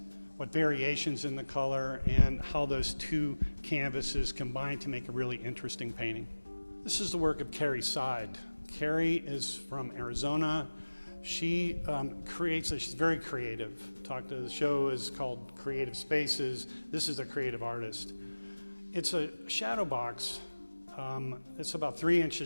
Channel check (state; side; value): inverted; both; correlation -1.00